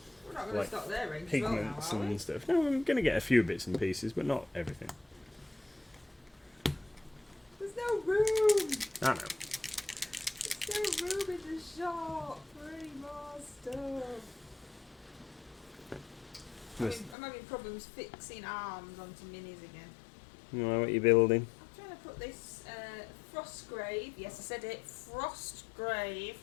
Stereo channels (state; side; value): drops out; right; at 17.2 s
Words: We're not going like to stop there, range pigments well now, are we? and stuff. No, I'm going to get a few bits and pieces, but not everything. There's no room! I know. There's no room in the shop for any more stuff. I'm having problems fixing arms onto minis again. You know what you're building? I'm trying to put this Frostgrave, yes I said it, Frostgrave